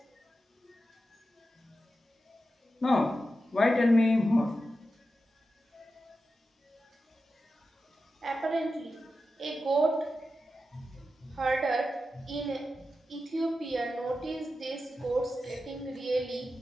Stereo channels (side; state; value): both; normal; correlation 0.91